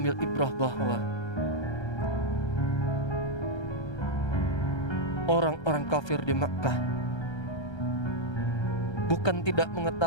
ibrah bahwa orang-orang kafir di Makkah bukan tidak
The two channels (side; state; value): right; late; 1.3 ms